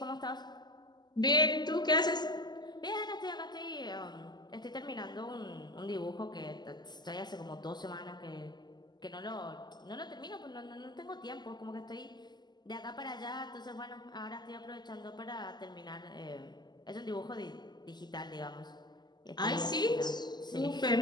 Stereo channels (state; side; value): late; right; 0.21 ms